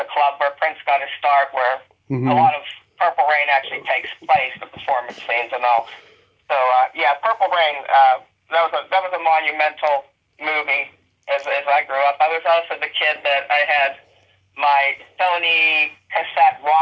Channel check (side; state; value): both; identical; correlation 1.00